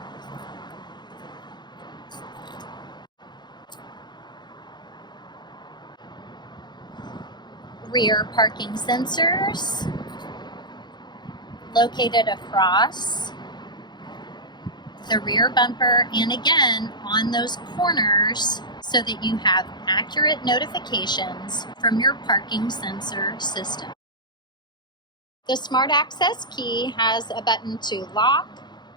Rear parking sensors located across the rear bumper and again on those corners so that you have accurate notifications from your parking sensor system. The Smart Access key has a button to lock,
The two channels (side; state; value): right; late; 0.21 ms